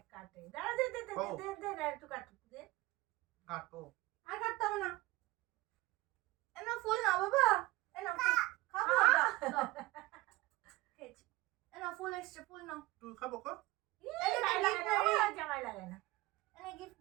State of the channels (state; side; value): quieter; left; 19.4 dB